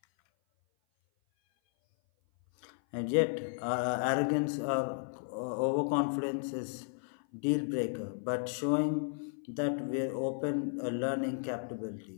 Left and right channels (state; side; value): silent; right; 55 dB below the other